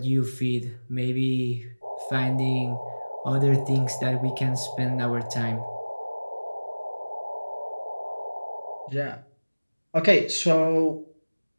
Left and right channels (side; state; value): both; inverted; correlation -1.00